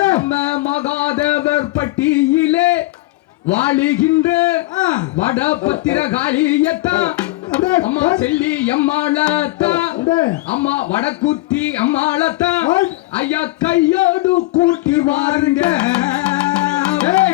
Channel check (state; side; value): quieter; right; 20.1 dB